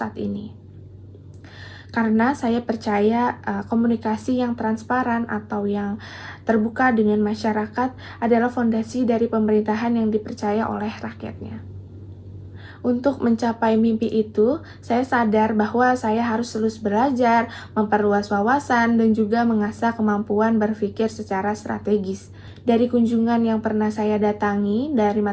ini. Karena saya percaya komunikasi yang transparan atau yang terbuka dengan masyarakat adalah fondasi dari pemerintahan yang dipercaya oleh rakyatnya. Untuk mencapai mimpi itu, saya sadar bahwa saya harus terus belajar, memperluas wawasan, dan juga mengasah kemampuan berpikir secara strategis. Dari kunjungan yang pernah saya datangi dari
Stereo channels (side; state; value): both; identical; correlation 1.00